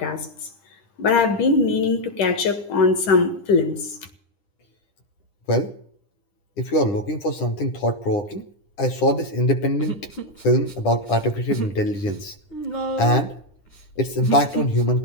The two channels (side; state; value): right; late; 9.9 ms